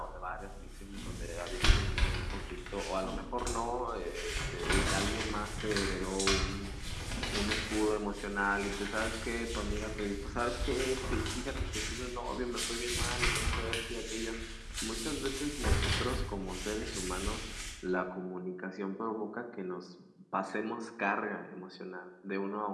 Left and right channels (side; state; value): both; identical; correlation 1.00